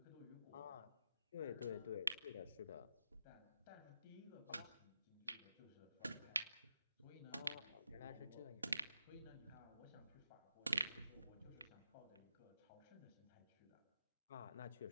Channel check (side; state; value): both; inverted; correlation -0.85